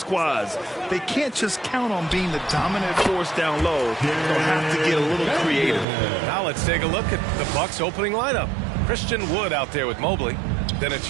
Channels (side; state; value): left; drops out; at 5.9 s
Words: They can't just count on being the dominant force down low. They'll have to get a little creative. Now let's take a look at the Bucks opening lineup. Christian Wood out there with Mobley. Then it's